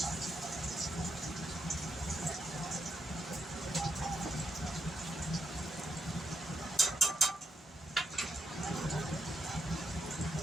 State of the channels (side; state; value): both; normal; correlation 0.81